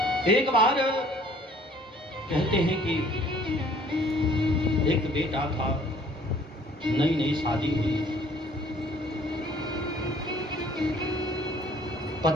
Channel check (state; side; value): normal; both; correlation 0.56